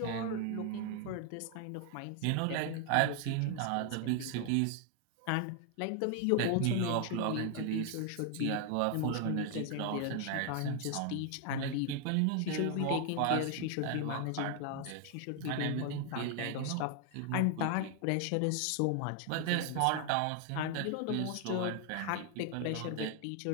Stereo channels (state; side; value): different; both; correlation 0.00